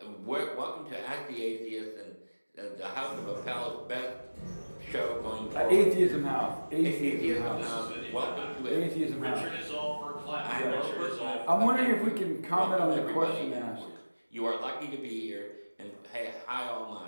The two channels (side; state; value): both; inverted; correlation -1.00